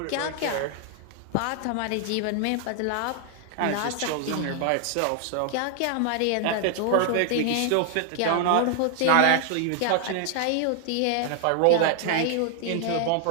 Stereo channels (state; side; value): different; both; correlation 0.00